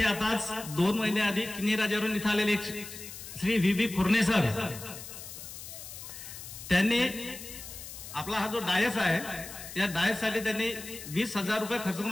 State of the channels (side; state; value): left; noise; hiss, 12 dB below the sound